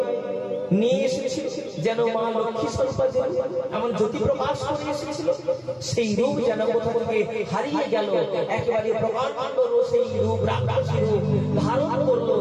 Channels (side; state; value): both; identical; correlation 1.00